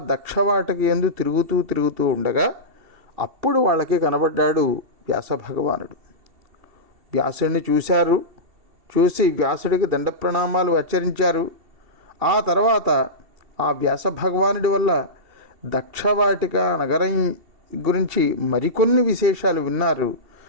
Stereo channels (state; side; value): late; left; 2.7 ms